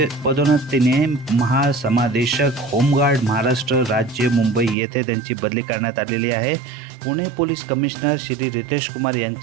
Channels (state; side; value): drops out; left; at 4.8 s